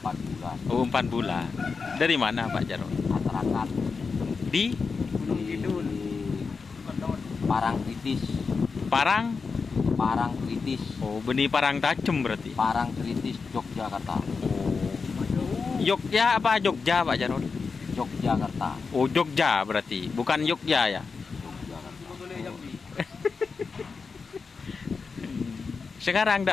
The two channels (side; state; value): right; quieter; 4.9 dB